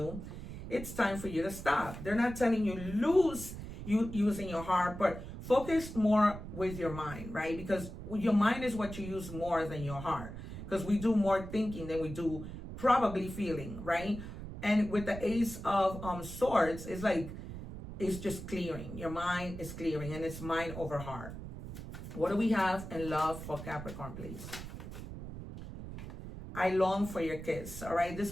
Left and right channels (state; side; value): noise; right; rumble, 10 dB below the sound